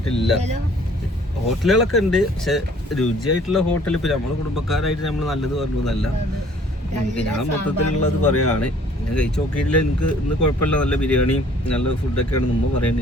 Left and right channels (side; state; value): both; normal; correlation 0.56